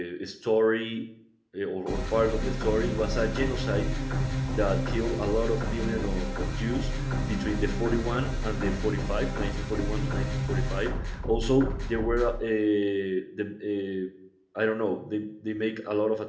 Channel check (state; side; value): identical; both; correlation 1.00